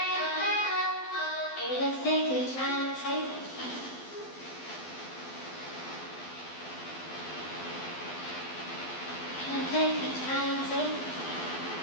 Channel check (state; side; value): late; right; 12 ms